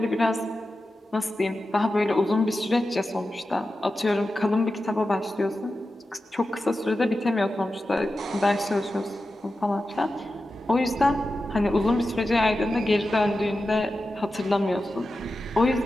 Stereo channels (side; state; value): both; normal; correlation 0.92